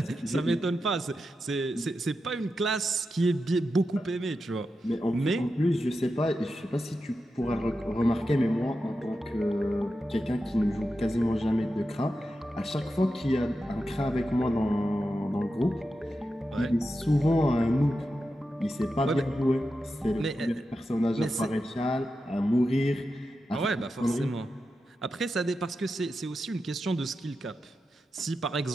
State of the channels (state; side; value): normal; both; correlation 0.89